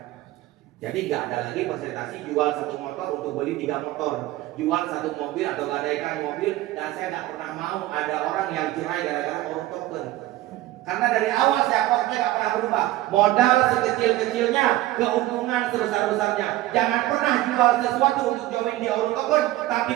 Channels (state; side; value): quieter; left; 16.2 dB